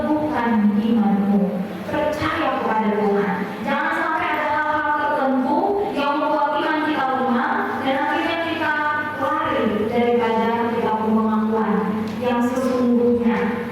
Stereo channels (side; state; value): both; identical; correlation 1.00